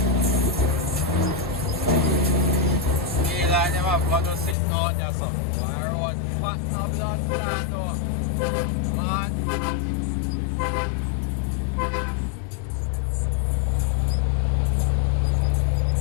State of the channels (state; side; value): drops out; right; at 4.5 s